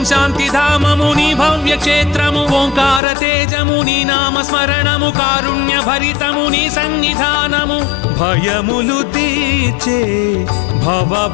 శాంతి ధామముని భవ్య క్షేత్రము ఓంకార తేజముని నామ స్మరణము కారుణ్య భరితముని సన్నిధానము భయములు తీర్చే భవ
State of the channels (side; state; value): right; drops out; at 3.0 s